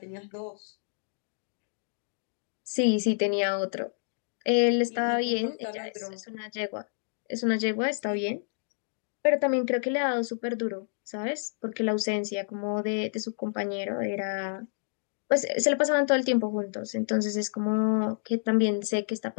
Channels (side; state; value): right; silent; digital silence